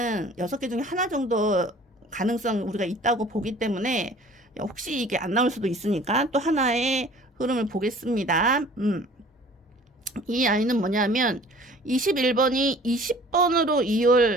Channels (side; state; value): both; normal; correlation 0.49